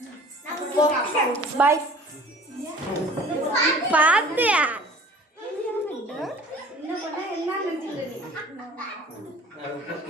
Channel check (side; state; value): both; normal; correlation 0.47